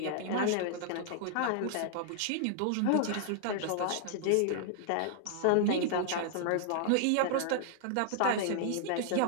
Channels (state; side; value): different; both; correlation -0.01